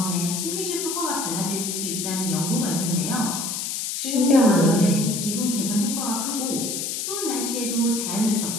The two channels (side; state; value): left; noise; hiss, 3 dB below the sound